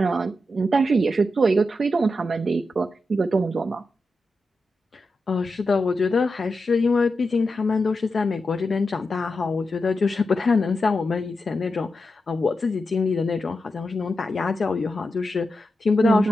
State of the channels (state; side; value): normal; both; correlation 0.88